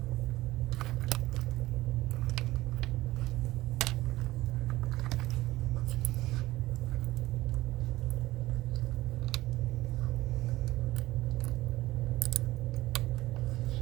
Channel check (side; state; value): left; quieter; 17.6 dB